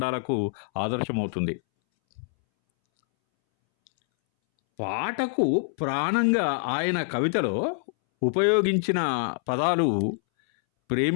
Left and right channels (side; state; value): right; silent; 61 dB below the other